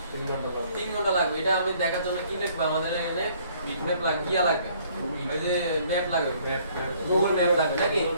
3 ঘন্টা লাগবে। এটা আমি দেখার জন্য কি দেখবো, আমাদের এখানে বিটম্যাপ লাগবে, ইয়া লাগবে, ওই যে ম্যাপ লাগবে, গুগল ম্যাপ লাগবে নাকি?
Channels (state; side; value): inverted; both; correlation -0.61